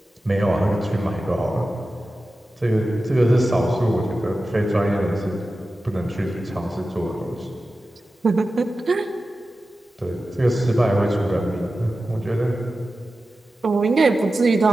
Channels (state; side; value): normal; both; correlation 0.94